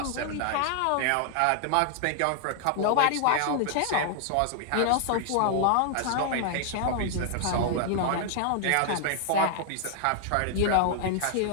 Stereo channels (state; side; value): different; both; correlation 0.00